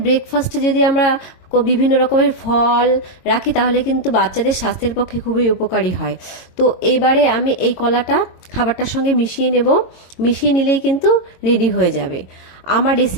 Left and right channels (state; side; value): late; right; 22 ms